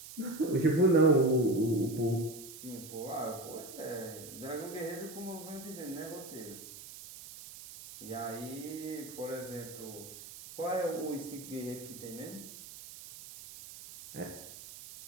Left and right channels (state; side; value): noise; right; hiss, 14 dB below the sound